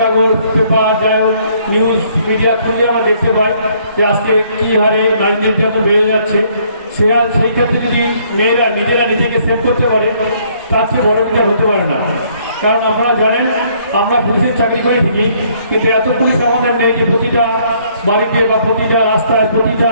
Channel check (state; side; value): inverted; both; correlation -0.65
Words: কাগজ, পেপার, যাই হোক নিউজ মিডিয়া খুললে আমরা দেখতে পাই যে আজকে কী হারে নারী নির্যাতন বেড়ে যাচ্ছে। সেই ক্ষেত্রে যদি মেয়েরা নিজেরা নিজেকে সেভ করতে পারে তার চেয়ে বড় কিছু হতে পারে না। কারণ আপনারা জানেন আমরা পুলিশের চাকরি করে থাকি, কিন্তু এত পুলিশ আমাদের নেই যে প্রতিটা বাড়িতে বা প্রতিটা রাস্তায় প্রতিটা